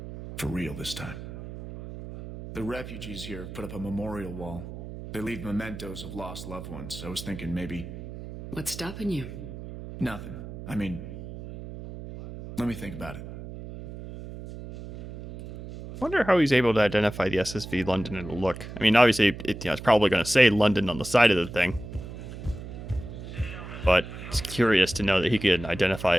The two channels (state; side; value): noise; right; hum, 11 dB below the sound